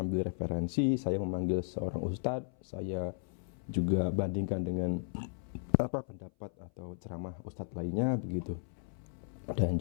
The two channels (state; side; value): silent; right; 54 dB below the other